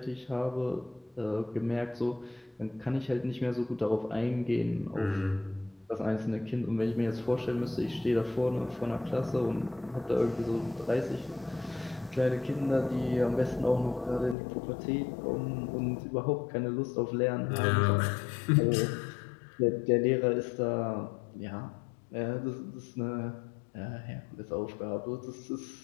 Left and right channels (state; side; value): drops out; right; at 14.4 s